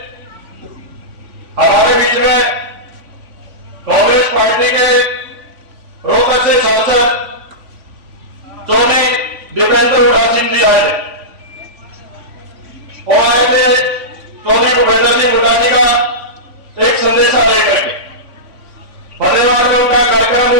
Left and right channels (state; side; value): late; left; 3.5 ms